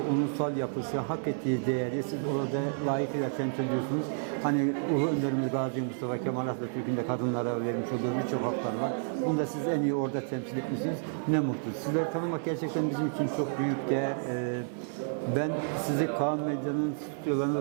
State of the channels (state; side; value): silent; left; digital silence